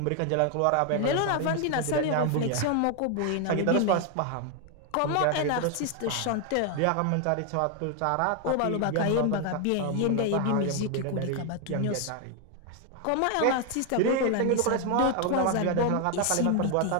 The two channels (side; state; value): both; different; correlation 0.00